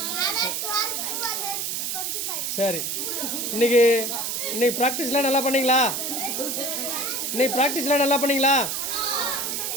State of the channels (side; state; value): right; noise; hiss, 2 dB below the sound